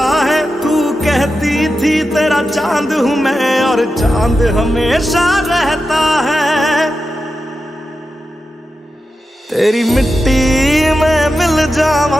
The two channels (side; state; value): both; normal; correlation 0.90